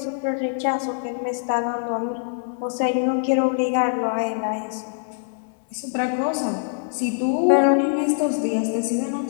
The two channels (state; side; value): silent; right; digital silence